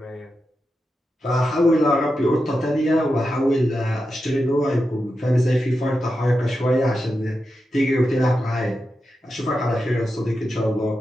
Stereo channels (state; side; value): normal; both; correlation 0.89